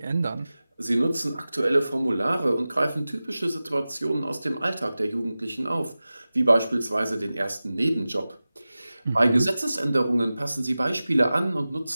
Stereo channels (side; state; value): both; inverted; correlation -0.96